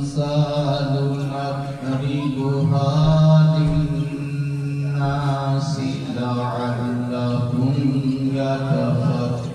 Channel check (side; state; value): both; identical; correlation 1.00